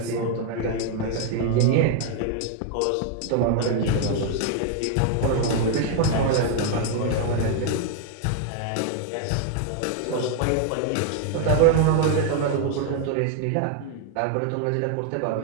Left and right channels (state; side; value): different; both; correlation 0.00